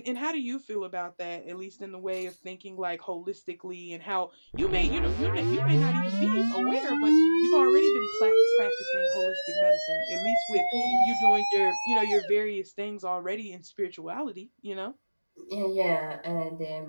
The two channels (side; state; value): both; inverted; correlation -1.00